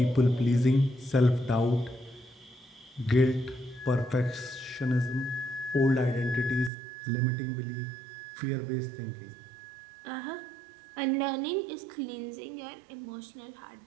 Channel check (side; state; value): left; drops out; at 6.7 s